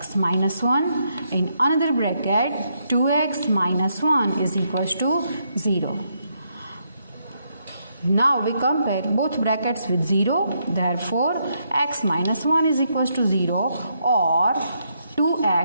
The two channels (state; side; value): inverted; both; correlation -0.77